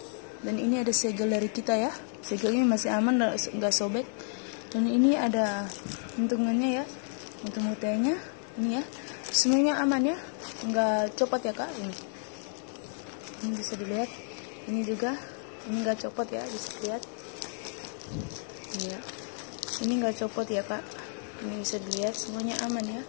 Dan ini ada segel dari kita ya, segelnya masih aman, gak sobek. Dan ini ada untungannya ya, untuk mutainya ini ya, semuanya aman ya, nggak copot ya Kak. Ini bisa dilihat, ini juga, ini nggak copot ya, bisa dilihat. Ini ya, ini nggak copot ya Kak, ini bisa dilihat semuanya aman ya.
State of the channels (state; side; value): silent; right; 56 dB below the other